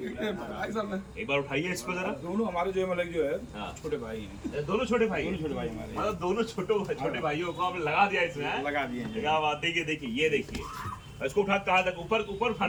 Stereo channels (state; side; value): identical; both; correlation 1.00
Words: भाई साहब है। एक बार उठाइए इसको जरा। दोनों हमारे जो मतलब जो है हाँ। छोटे भाई हैं। दोनों छोटे भाई? दोनों छोटे भाई हमारे। मतलब दोनों छोटे भाइयों को आपने लगा दिया इसमें, हैं? लगा दिए हैं। क्या बात। देखिए ये देखिए, इसको उठा कहाँ तक? ऊपर